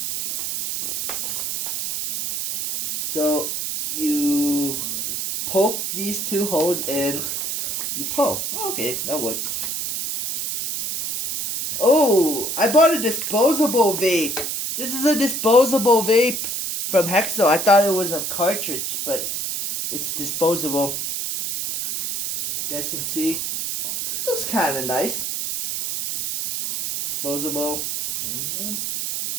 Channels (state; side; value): noise; right; hiss, 3 dB below the sound